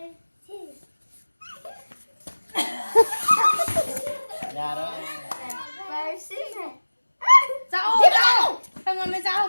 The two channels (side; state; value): both; inverted; correlation -1.00